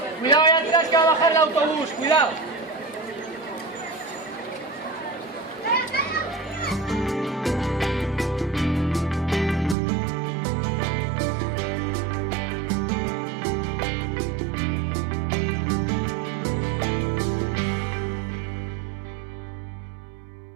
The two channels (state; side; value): drops out; left; at 9.8 s